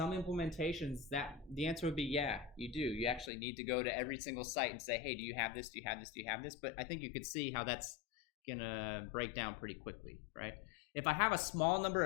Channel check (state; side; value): drops out; right; at 3.3 s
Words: implementations, the answer would be yeah, you do. You actually need to go to every single site and say, hey, do you have this? Do you have this? Do you have this? But I think you could see how that's gonna break down pretty quickly, right? If I have a small number